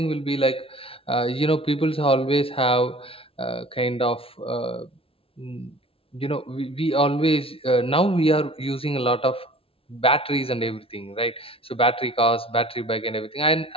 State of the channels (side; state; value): right; late; 0.27 ms